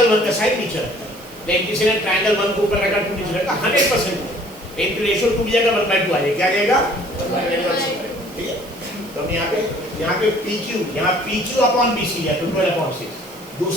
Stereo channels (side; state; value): right; noise; hiss, 21 dB below the sound